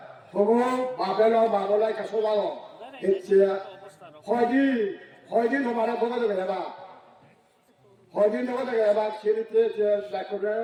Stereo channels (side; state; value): both; identical; correlation 1.00